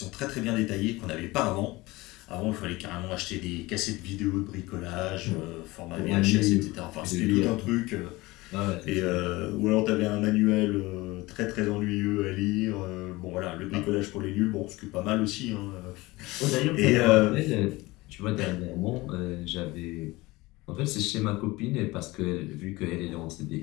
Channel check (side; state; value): right; quieter; 21.0 dB